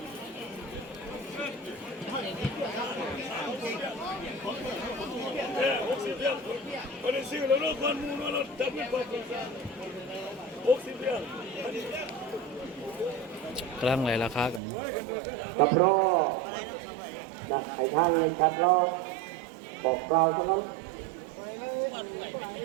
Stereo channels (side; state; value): left; drops out; at 14.6 s